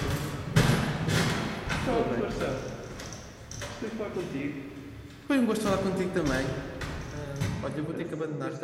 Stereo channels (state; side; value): identical; both; correlation 1.00